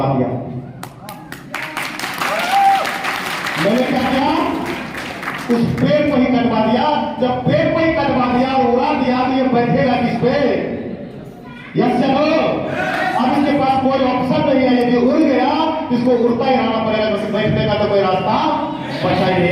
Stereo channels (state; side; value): identical; both; correlation 1.00